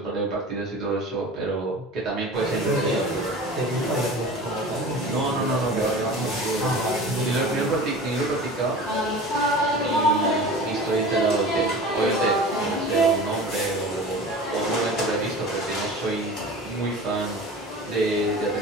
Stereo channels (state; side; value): normal; both; correlation 0.37